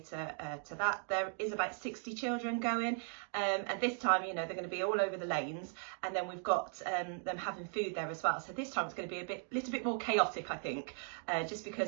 to that. There is about 60 children going, and this time, you know, they're going to be all over the lanes, and then we've got them having food there as well. So this time it's going to be a little bit more chaotic, I think, just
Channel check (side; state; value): left; silent; 53 dB below the other